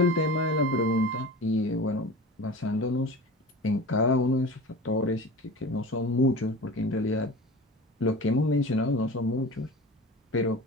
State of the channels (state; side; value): normal; both; correlation 0.35